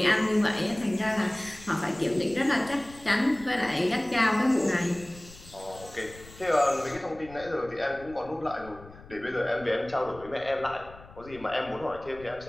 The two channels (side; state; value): left; noise; rumble, 20 dB below the sound